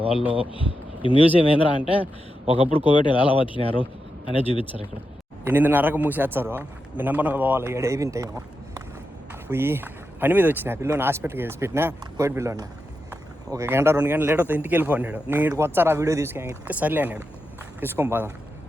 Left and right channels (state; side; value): normal; both; correlation 0.88